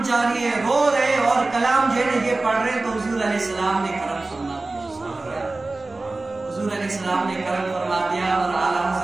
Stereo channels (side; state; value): left; quieter; 3.2 dB